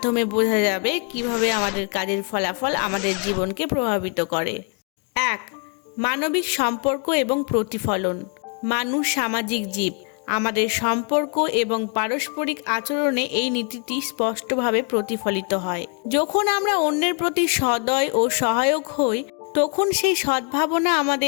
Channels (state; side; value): quieter; right; 37.9 dB